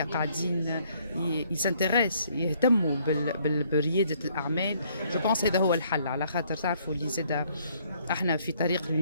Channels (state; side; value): inverted; both; correlation -0.65